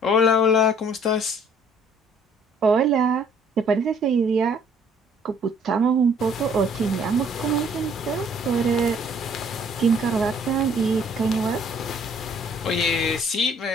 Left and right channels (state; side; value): normal; both; correlation 0.59